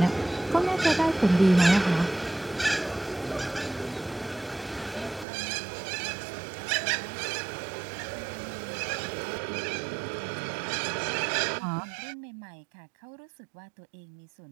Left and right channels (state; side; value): drops out; left; at 5.2 s